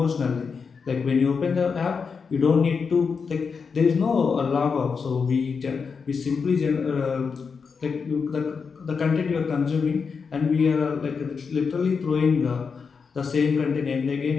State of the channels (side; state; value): right; quieter; 5.5 dB